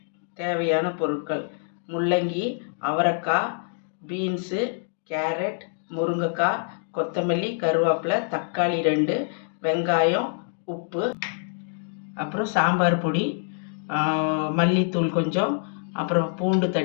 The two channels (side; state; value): right; silent; 61 dB below the other